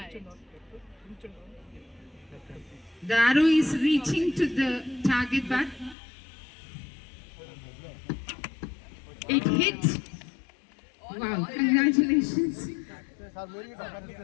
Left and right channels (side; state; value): right; drops out; at 6.0 s